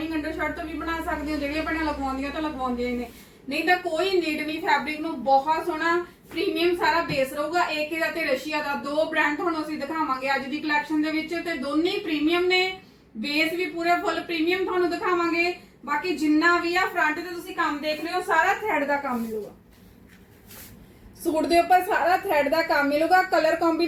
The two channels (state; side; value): identical; both; correlation 1.00